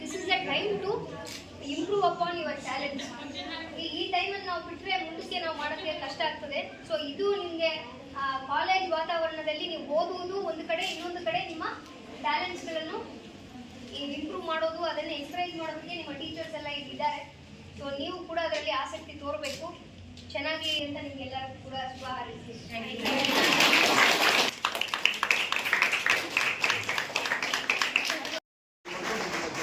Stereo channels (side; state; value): both; identical; correlation 1.00